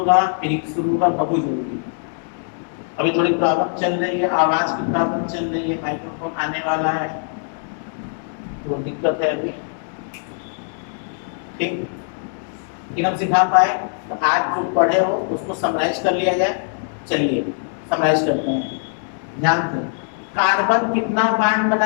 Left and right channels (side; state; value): right; silent; 65 dB below the other